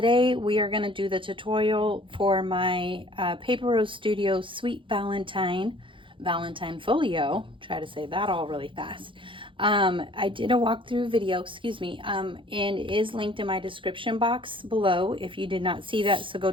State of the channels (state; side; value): late; left; 0.25 ms